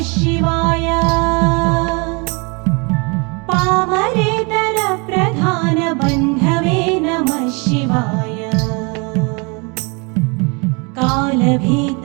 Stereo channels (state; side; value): quieter; left; 31.3 dB